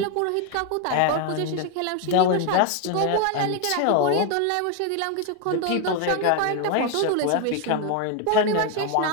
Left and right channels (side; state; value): both; different; correlation 0.01